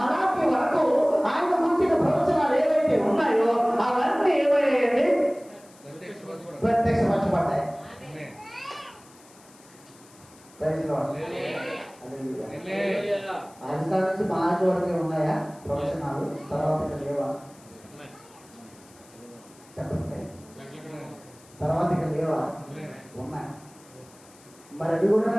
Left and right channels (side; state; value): left; noise; hiss, 25 dB below the sound